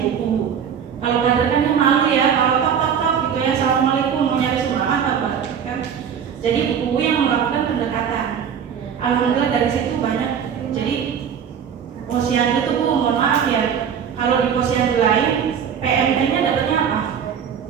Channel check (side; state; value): left; quieter; 7.8 dB